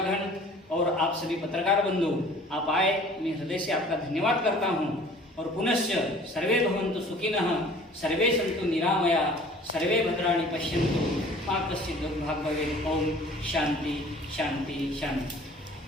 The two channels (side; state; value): both; normal; correlation 0.49